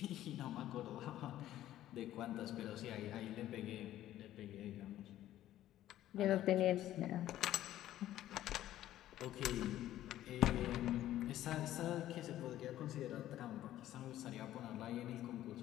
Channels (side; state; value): right; quieter; 13.3 dB